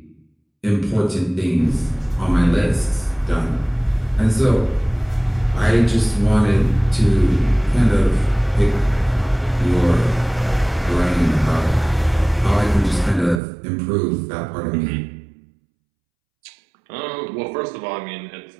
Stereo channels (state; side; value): drops out; left; at 13.4 s